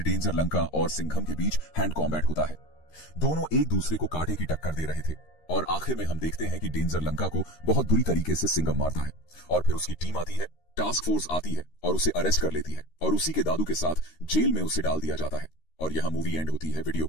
डेंजर लंका और सिंघम के बीच हैंड कॉम्बैट होता है। दोनों एक दूसरे को कांटे की टक्कर दे रहे थे और आखिर में हम देखते हैं कि डेंजर लंका को बहुत बुरी तरीके से सिंघम मारता है और फिर उसकी टीम आती है, टास्क फोर्स आती है और उसे अरेस्ट कर लेती है और उसी के दादू के साथ जेल में उसे डाल दिया जाता है। और यहां मूवी एंड होती है। वीडियो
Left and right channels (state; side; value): late; right; 13 ms